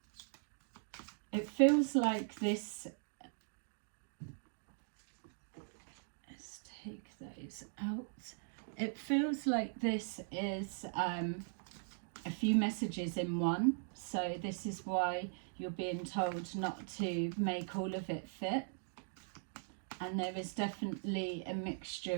it feels like this, let's take those out. It feels like this is a few messages in one, so this is why you're being told not to make all of it fit. And there is definitely a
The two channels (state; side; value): silent; left; digital silence